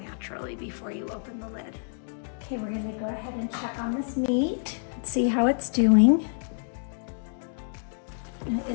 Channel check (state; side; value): silent; right; digital silence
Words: before you open the lid. Okay, we're gonna go ahead and check on this meat and see how it's doing. It